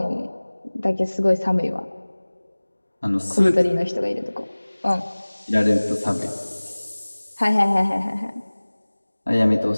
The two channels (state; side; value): inverted; both; correlation -1.00